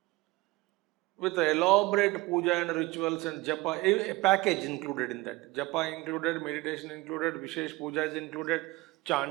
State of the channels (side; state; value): left; quieter; 21.2 dB